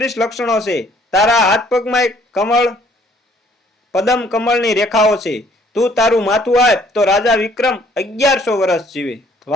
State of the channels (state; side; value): normal; both; correlation 0.61